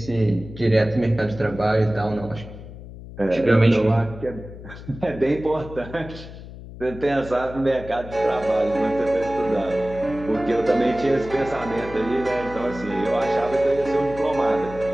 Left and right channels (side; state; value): left; noise; hum, 14 dB below the sound